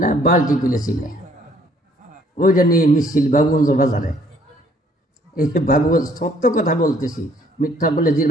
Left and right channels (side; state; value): both; normal; correlation 0.62